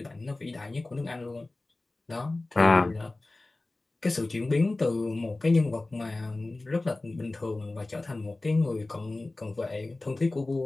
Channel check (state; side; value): quieter; right; 3.0 dB